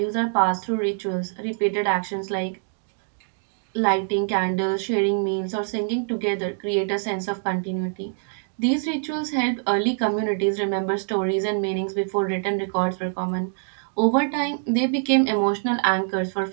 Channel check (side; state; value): left; silent; digital silence